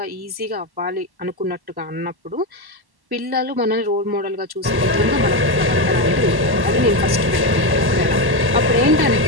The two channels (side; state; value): left; late; 1.1 ms